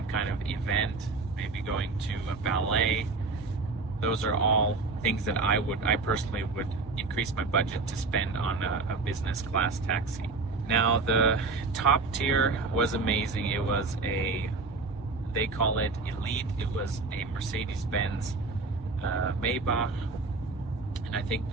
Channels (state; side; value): quieter; left; 3.8 dB